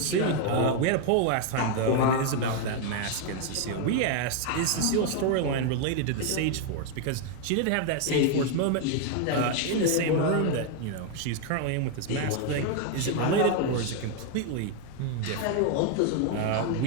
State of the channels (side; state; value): both; different; correlation 0.01